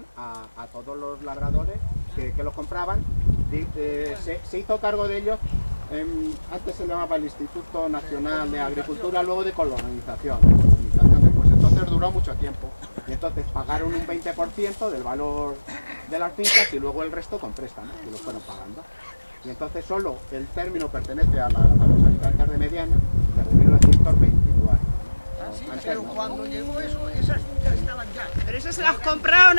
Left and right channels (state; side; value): inverted; both; correlation -1.00